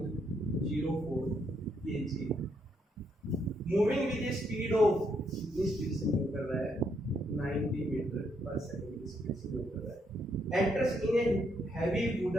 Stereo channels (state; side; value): normal; both; correlation 0.75